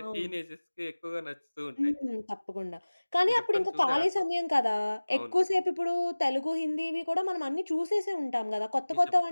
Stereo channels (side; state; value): both; inverted; correlation -1.00